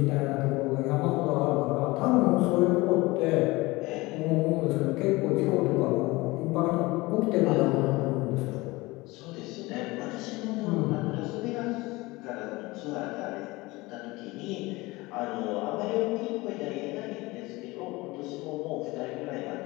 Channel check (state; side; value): quieter; right; 21.8 dB